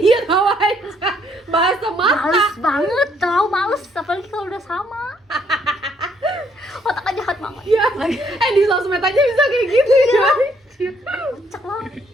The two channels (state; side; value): normal; both; correlation 0.69